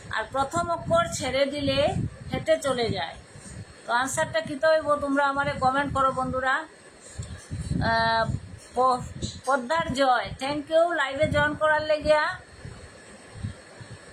আর প্রথম অক্ষর ছেড়ে দিলে হেঁটে চলে যায়। তো আনসারটা কী হইব? তোমরা আমারে কমেন্ট করো বন্ধুরা। পদ্মার জয়, থ্যাংক ইউ লাইভে জয়েন করার লেগিয়া,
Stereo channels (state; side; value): identical; both; correlation 1.00